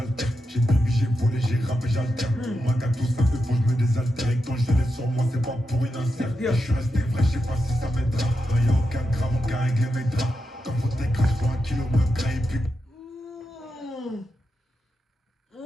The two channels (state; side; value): normal; both; correlation 0.87